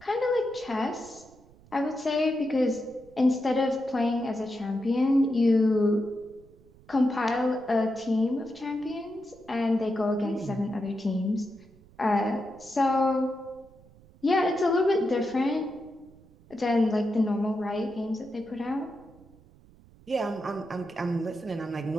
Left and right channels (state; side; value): noise; right; rumble, 26 dB below the sound